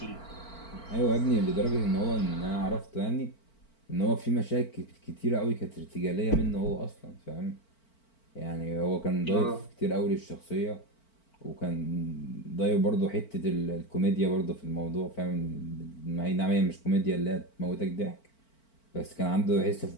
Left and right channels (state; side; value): late; right; 4.5 ms